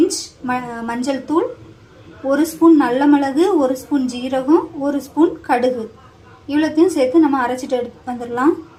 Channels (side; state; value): both; identical; correlation 1.00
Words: மஞ்சள் தூள், 1 ஸ்பூன் நல்ல மிளகு, 1 ஸ்பூன் ஜீரகம், 1 ஸ்பூன் கடுகு, இவ்வளோத்தையும் சேர்த்து நம்ம அரைச்சிட்டு வந்துடலாம்.